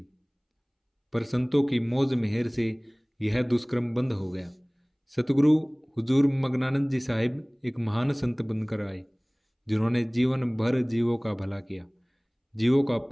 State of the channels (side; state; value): both; identical; correlation 1.00